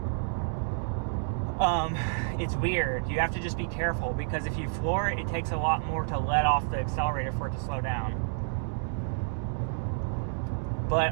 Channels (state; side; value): silent; left; digital silence